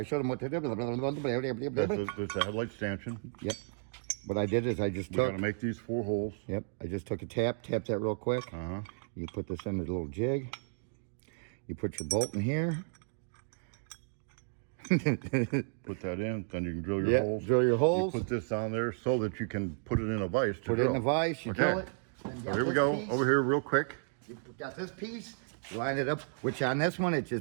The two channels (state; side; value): silent; left; digital silence